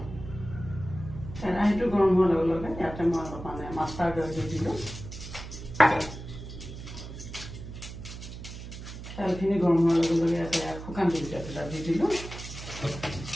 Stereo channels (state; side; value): noise; right; hum, 11 dB below the sound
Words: কেৰাহীটো গৰম হোৱাৰ লগে লগে ইয়াতে মই অলপমান মাষ্টাৰ্ড অইল দি দিলোঁ। তেলখিনি গৰম হোৱাৰ লগে লগে ইয়াতে শুকান জলকীয়া দুটা দি দিলোঁ।